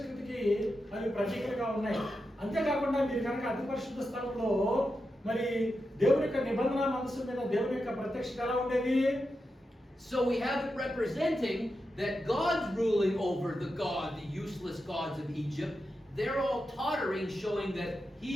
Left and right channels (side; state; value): both; normal; correlation 0.88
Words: కృతికి అవి ప్రతీకలుగా ఉన్నాయి. అంతేకాకుండా మీరు కనుక అతి పరిశుద్ధ స్థలంలో మరి దేవుని యొక్క నిబంధన మనసు మీద దేవుని యొక్క ప్రత్యక్షత ఎలా ఉండేది? So we have it representing that God's ruling over the useless gods of Egypt. They're all tottering, showing that